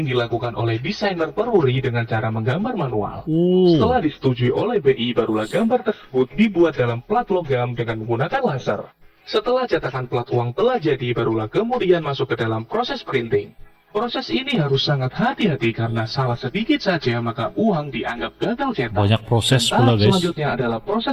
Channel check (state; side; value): identical; both; correlation 1.00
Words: dilakukan oleh desainer Peruri dengan cara menggambar manual. Setelah disetujui oleh BI, barulah gambar tersebut dibuat dalam plat logam dengan menggunakan laser. Setelah cetakan plat uang telah jadi, barulah kemudian masuk ke dalam proses printing. Proses ini harus sangat hati-hati karena salah sedikit saja maka uang dianggap gagal cetak. Banyak proses Tahap pula guys. selanjutnya adalah